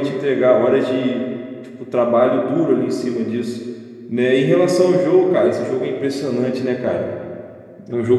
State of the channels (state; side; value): identical; both; correlation 1.00